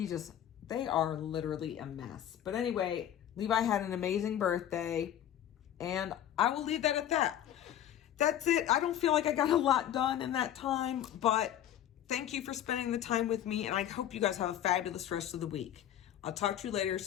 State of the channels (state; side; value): quieter; right; 11.1 dB